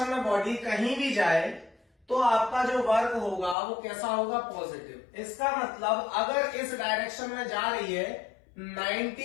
में बॉडी कहीं भी जाए तो आपका जो वर्क होगा वो कैसा होगा, पॉजिटिव। इसका मतलब अगर इस डायरेक्शन में जा रही है,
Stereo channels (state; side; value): drops out; right; at 3.6 s